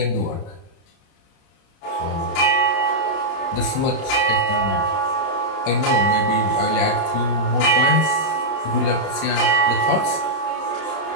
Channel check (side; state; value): right; late; 30 ms